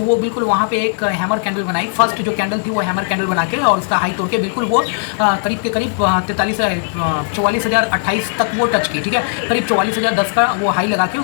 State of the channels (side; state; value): right; silent; digital silence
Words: बिल्कुल वहाँ पे एक हैमर कैंडल बनाई, फर्स्ट जो कैंडल थी वो हैमर कैंडल बना के और उसका हाई तोड़ के बिल्कुल वो करीब के करीब 44,028 तक वो टच की, ठीक है। करीब 44,010 का वो हाई लगा के